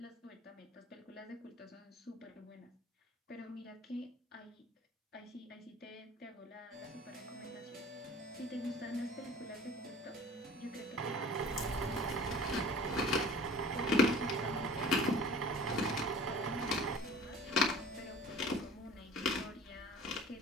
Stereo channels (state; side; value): normal; both; correlation 0.44